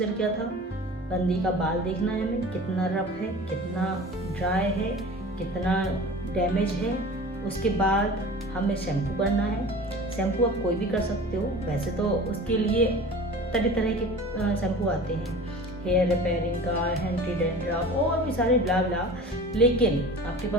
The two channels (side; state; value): both; normal; correlation 0.39